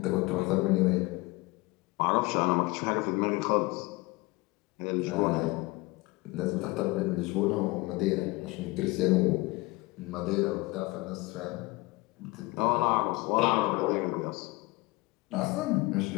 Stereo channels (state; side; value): quieter; right; 23.1 dB